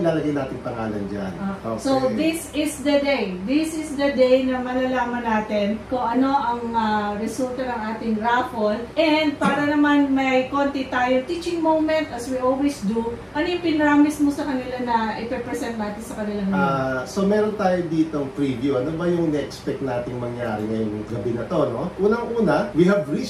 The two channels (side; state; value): both; identical; correlation 1.00